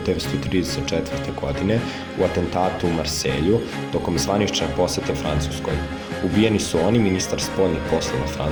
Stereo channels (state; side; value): identical; both; correlation 1.00